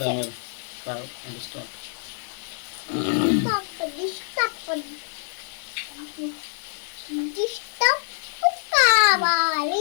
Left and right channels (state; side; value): silent; right; 57 dB below the other